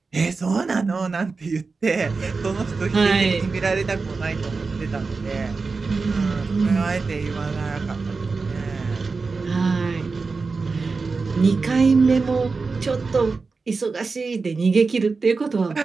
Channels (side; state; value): left; quieter; 4.3 dB